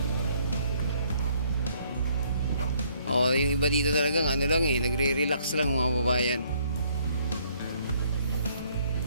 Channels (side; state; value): both; inverted; correlation -0.65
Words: Oh, yung iba dito talagang ano lang nagre-relax lang mga kababayan.